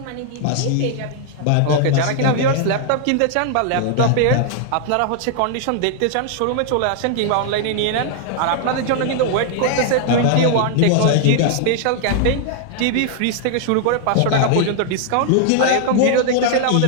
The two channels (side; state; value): both; different; correlation 0.00